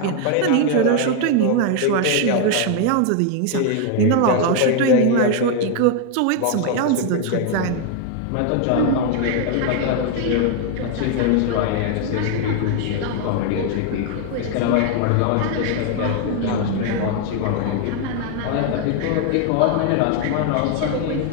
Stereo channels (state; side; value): different; both; correlation 0.00